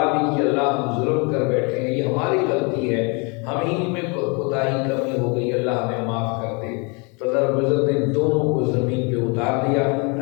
بھی کہ اللہ ہم ظلم کر بیٹھے ہیں، یہ ہماری غلطی ہے، ہم ہی میں کوتاہی کمی ہو گئی، اللہ ہمیں معاف کر دے۔ تو اللہ رب العزت نے دونوں کو زمین پہ اتار دیا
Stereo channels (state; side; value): quieter; right; 32.4 dB